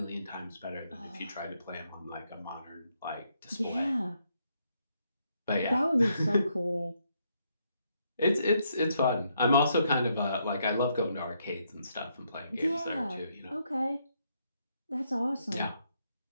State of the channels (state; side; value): inverted; both; correlation -0.76